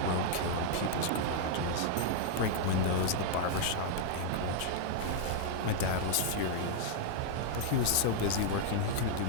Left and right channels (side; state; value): both; different; correlation -0.01